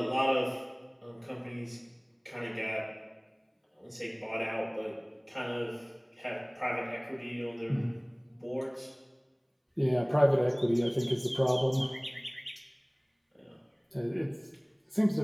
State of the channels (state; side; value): identical; both; correlation 1.00